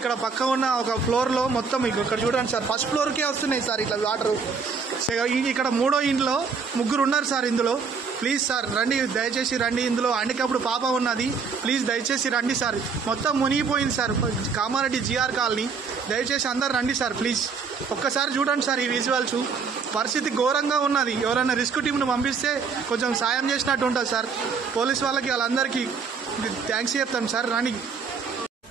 పక్క ఉన్న ఒక ఫ్లోర్ లో మొత్తం ఇక్కడ చూడండి సార్, ఫస్ట్ ఫ్లోర్ కే వస్తున్నాయి సార్ ఇట్లా వాటర్. ఇక్కడ మూడో ఇంట్లో ముగ్గురు ఉన్నారు సార్ ఇందులో. ప్లీజ్ సార్ రండి, దయచేసి రండి. ఇందులో హ్యాండిక్యాప్డ్ పాప ఉన్నది, ప్లీజ్ దయచేసి రండి సార్. మొత్తం మునిగిపోయింది సార్ కామారెడ్డి జిఆర్ కాలనీ. దయచేసి అందరు రండి సార్ ప్లీజ్. ఒక్కసారి చూడండి సార్ ఈ విజువల్స్, పరిస్థితి ఘోరంగా ఉన్నది. ఎవరైనా రిస్క్ టీంను పంపిస్తే కొంచెం సాయం చేసినట్టు ఉంటుంది సార్. పోలీస్ వాళ్ళకి వాళ్ళందరికీ థ్యాంక్స్ చెప్తాను సార్. రండి.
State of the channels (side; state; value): left; quieter; 5.4 dB